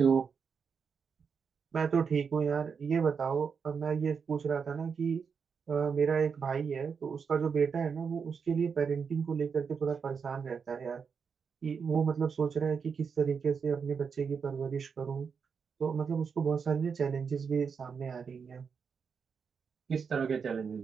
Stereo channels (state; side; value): quieter; left; 6.1 dB